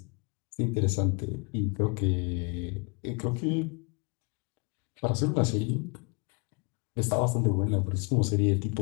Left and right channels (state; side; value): quieter; right; 31.8 dB